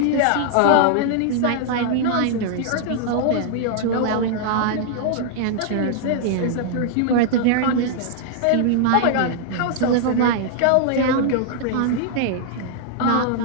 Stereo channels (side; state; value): both; different; correlation -0.01